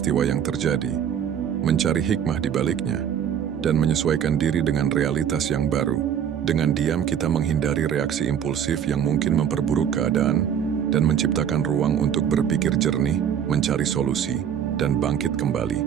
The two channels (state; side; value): quieter; left; 8.8 dB